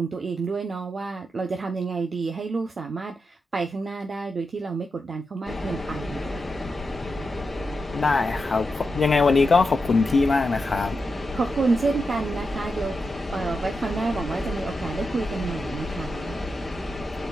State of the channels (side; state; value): both; normal; correlation 0.88